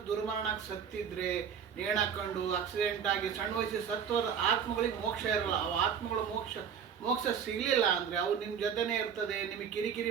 ದುರ್ಮರಣಕ್ಕೆ ಸತ್ತಿದ್ರೆ, ನೇಣಾಕೊಂಡು ಆಕ್ಸಿಡೆಂಟ್ ಆಗಿ ಸಣ್ಣ ವಯಸ್ಸಿಗೆ ಸತ್ತೋರ ಆತ್ಮಗಳಿಗೆ ಮೋಕ್ಷ ಇರಲ್ಲ. ಅವು ಆತ್ಮಗಳು ಮೋಕ್ಷ ಸಿಗಲಿಲ್ಲ ಅಂದರೆ ಅವು ನಿಮ್ಮ ಜೊತೆನೇ ಇರ್ತದೆ, ನಿಮಗೆ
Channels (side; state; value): left; quieter; 7.4 dB